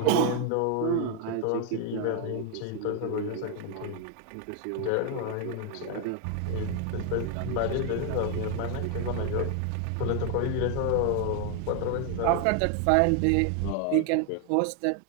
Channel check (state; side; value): different; both; correlation 0.00